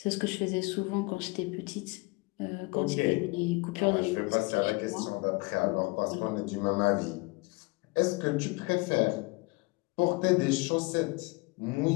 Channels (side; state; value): right; quieter; 26.3 dB